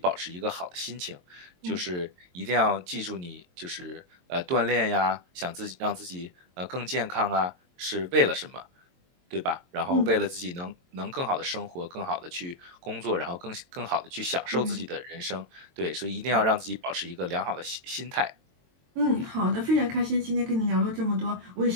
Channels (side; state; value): left; late; 22 ms